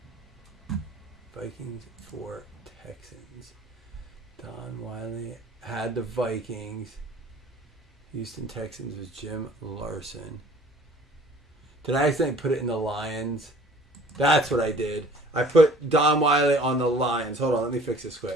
Vikings for Texans. Don Wiley had the Vikings. Houston Texans was Jim Larson. Did I accidentally put it in the Lions? That's what I did. I put Don Wiley on the Lions. Hold on, let me fix this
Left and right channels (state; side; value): normal; both; correlation 0.51